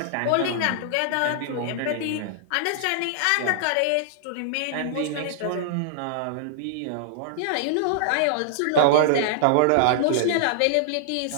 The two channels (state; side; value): different; both; correlation -0.01